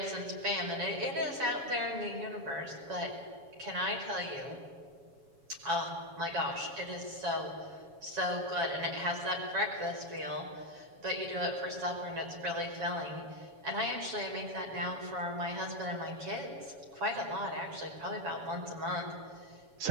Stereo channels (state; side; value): late; left; 7.2 ms